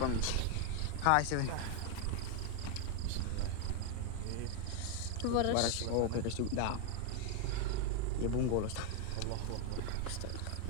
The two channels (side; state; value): both; different; correlation 0.00